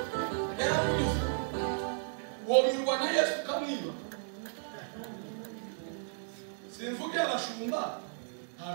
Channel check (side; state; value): left; silent; digital silence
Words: womirwa na Yesu kamwiba simvuge abashumba